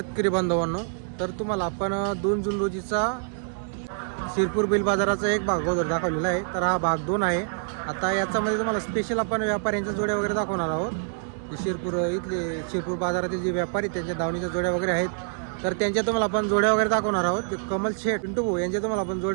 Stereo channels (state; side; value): silent; left; digital silence